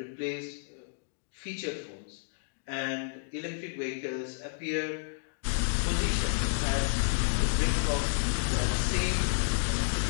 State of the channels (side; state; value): right; silent; digital silence